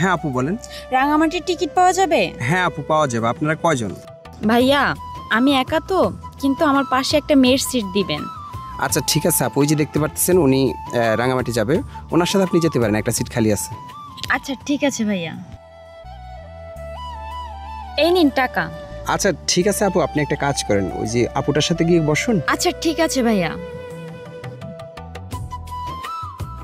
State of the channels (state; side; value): identical; both; correlation 1.00